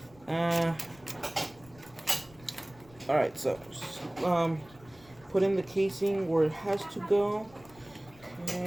All right, so put in the casing where it has to go.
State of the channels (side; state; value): left; noise; rumble, 24 dB below the sound